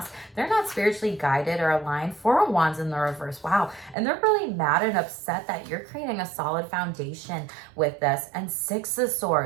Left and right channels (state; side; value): drops out; left; at 4.0 s